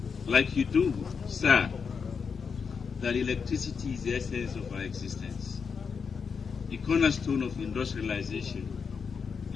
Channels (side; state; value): right; quieter; 5.9 dB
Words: like you do, sir, that electricity is the essence of our existence, the cornerstone of industrialization,